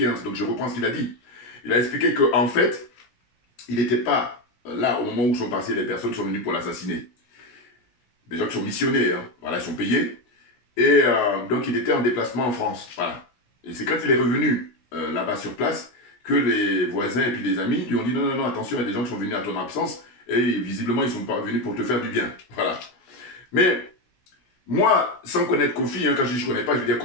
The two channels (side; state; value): right; late; 16 ms